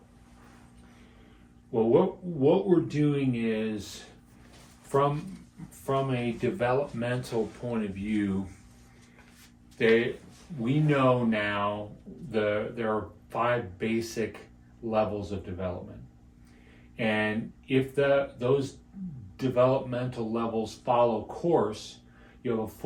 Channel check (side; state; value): both; identical; correlation 1.00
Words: Well, what we're doing is, from a developmental point of view, we know now there are 5 basic levels of development, and if those developmental levels follow course, you have a